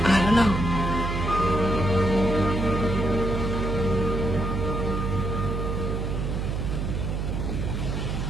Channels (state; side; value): noise; right; hum, 1 dB below the sound